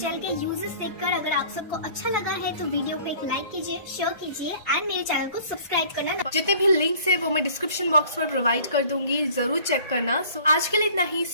के यूजेस देखकर अगर आप सबको अच्छा लगा है तो वीडियो को एक लाइक कीजिए, शेयर कीजिए एंड मेरे चैनल को सब्सक्राइब करना। जितने भी लिंक्स है वो मैं डिस्क्रिप्शन बॉक्स पर प्रोवाइड कर दूंगी, जरूर चेक करना। आज के लिए इतना ही।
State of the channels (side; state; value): both; inverted; correlation -0.49